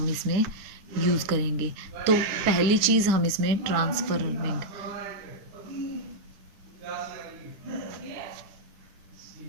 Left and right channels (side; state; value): left; late; 9.6 ms